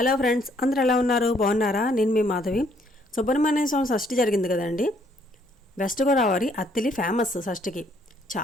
friends, అందరూ ఎలా ఉన్నారు? బాగున్నారా? నేను మీ మాధవి. సుబ్రహ్మణ్య స్వామి షష్ఠి జరిగింది కదండి. వెస్ట్ గోదావరి అత్తిలి ఫేమస్ షష్ఠికి.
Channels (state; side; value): normal; both; correlation 0.67